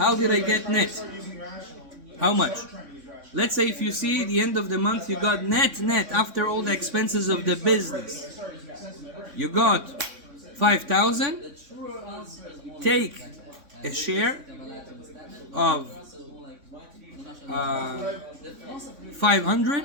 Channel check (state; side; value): late; left; 3.6 ms